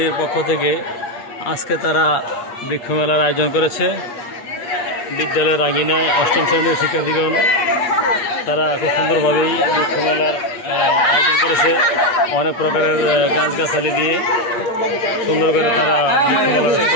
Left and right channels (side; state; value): right; late; 8.5 ms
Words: পক্ষ থেকে আজকে তারা বৃক্ষমেলার আয়োজন করেছে। বিদ্যালয়ের আঙিনায় অষ্টম শ্রেণীর শিক্ষার্থীগণ তারা খুব সুন্দরভাবেই বৃক্ষমেলার আয়োজন করেছে। অনেক প্রকারের গাছগাছালি দিয়ে সুন্দর করে তারা বৃক্ষমেলার